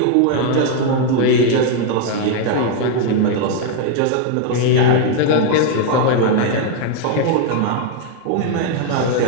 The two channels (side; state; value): both; different; correlation 0.01